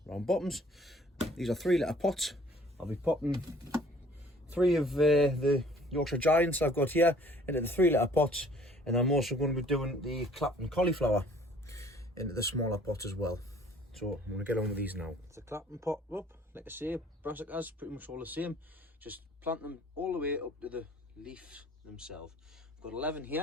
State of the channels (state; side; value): normal; both; correlation 0.55